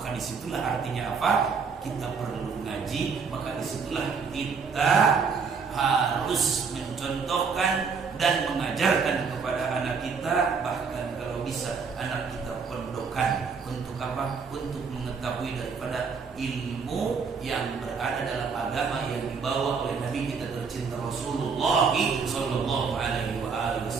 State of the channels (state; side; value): quieter; left; 5.4 dB